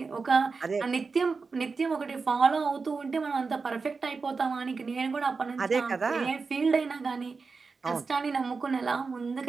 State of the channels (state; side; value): quieter; left; 4.6 dB